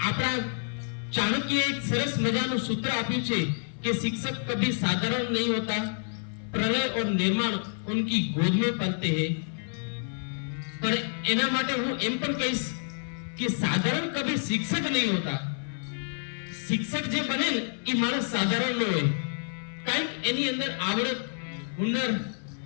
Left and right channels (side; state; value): right; silent; 56 dB below the other